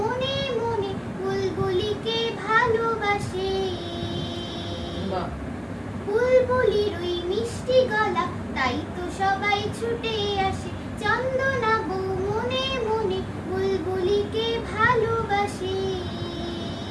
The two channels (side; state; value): both; identical; correlation 1.00